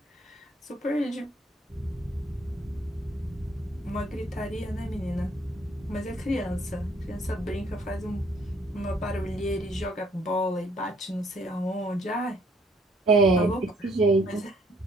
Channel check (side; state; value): both; normal; correlation 0.64